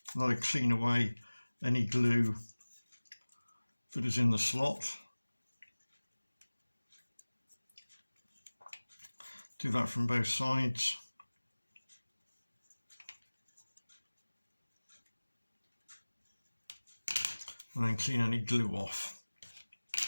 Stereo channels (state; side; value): inverted; both; correlation -1.00